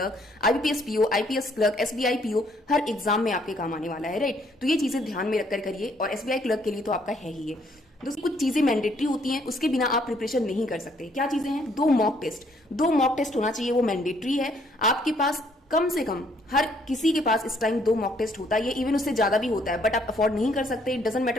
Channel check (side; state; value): both; normal; correlation 0.67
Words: IBPS PO, IPS clerk, SBI PO, हर एग्जाम में आपके काम आने वाला है। राइट, तो ये चीजें ध्यान में रखकर करिए, और एसबीआई क्लर्क के लिए तो आपका है ही है। दोस्तों, कुछ चीजें मैंडेटरी होती हैं, उसके बिना आप प्रिपरेशन नहीं कर सकते। क्या चीजें हैं? 2 मॉक टेस्ट, 2 मॉक टेस्ट होना चाहिए, वो मैंडेटरी है। आपके पास कम से कम, हर किसी के पास इस टाइम 2 मॉक टेस्ट होता है, इवन उससे ज्यादा भी होता है, बट आप अफोर्ड नहीं कर सकते, it doesn't